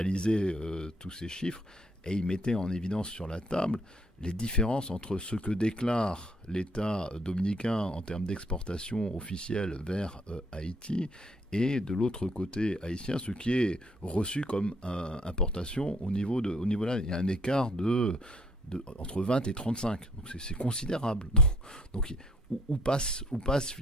tous ces chiffres, et il mettait en évidence sur la table les différences entre ce que déclare l'État dominicain en termes d'exportation officielle vers Haïti et de l'autre côté haïtien, ce qui est reçu comme importation au niveau là. Il y a un écart entre 20 et 35. Donc c'est considérable. Donc où passent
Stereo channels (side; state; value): both; normal; correlation 0.64